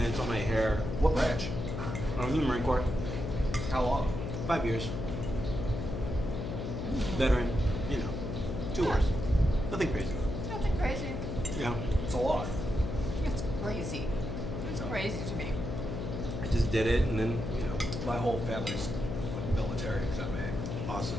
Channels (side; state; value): left; noise; hum, 4 dB below the sound